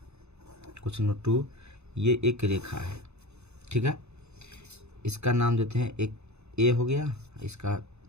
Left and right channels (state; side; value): late; left; 0.81 ms